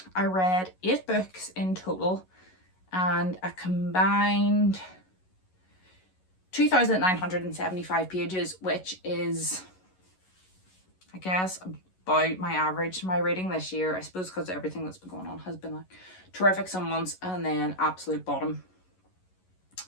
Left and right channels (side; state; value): right; late; 11 ms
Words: I read 8 books in total and a combined 2,975 pages, which is, I guess, about my average. My reading this year, I suppose because everything that's been going on has been like terrific some months and then absolute bottom